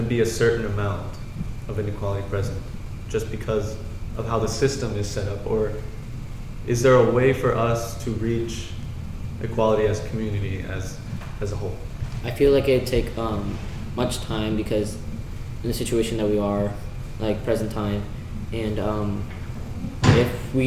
to be a certain amount of inequality present, just because of how the system is set up, or is there a way for us to reach equality as a community, as a whole? I feel like it'd take much time, because in the situation that we are, like present time, and if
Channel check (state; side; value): identical; both; correlation 1.00